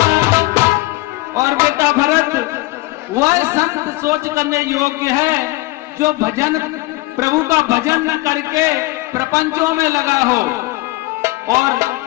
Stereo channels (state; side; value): quieter; right; 20.9 dB